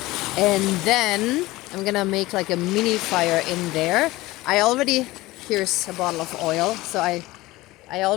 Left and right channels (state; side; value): quieter; right; 19.1 dB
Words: And then I'm gonna make like a mini fire in there. Here's a bottle of oil. So I